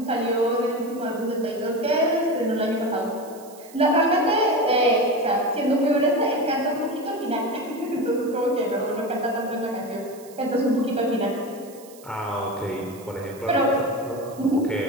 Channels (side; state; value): right; noise; hiss, 22 dB below the sound